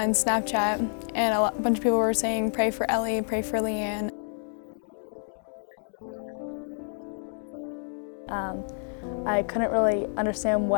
Snapchat, and a bunch of people were saying, "Pray for Ellie, pray for Leanne." And no one really knew, and I didn't really know what happened, and no one really knew what to say. I couldn't really understand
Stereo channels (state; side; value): silent; right; 59 dB below the other